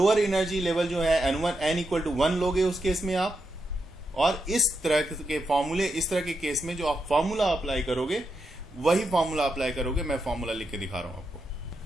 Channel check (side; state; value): both; normal; correlation 0.85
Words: एनर्जी लेवल जो है n इक्वल टू 1 लोगे उस केस में आप। और इस तरह के फॉर्मूले, इस तरह के केस में जो आप फॉर्मूला अप्लाई करोगे वही फॉर्मूला अप्लाई करोगे। मैं फॉर्मूला लिख के दिखा रहा हूं आपको।